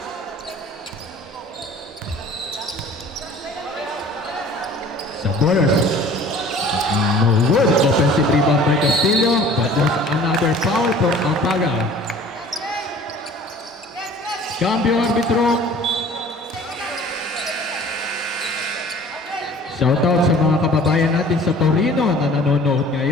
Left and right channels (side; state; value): both; normal; correlation 0.48